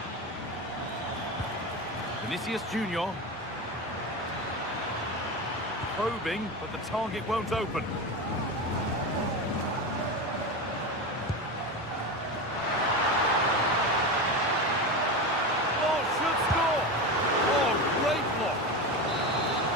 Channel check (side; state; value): both; normal; correlation 0.21